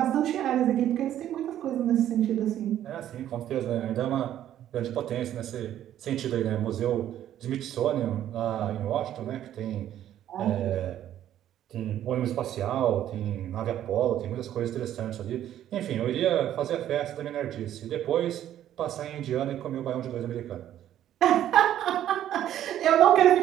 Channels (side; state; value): left; quieter; 11.6 dB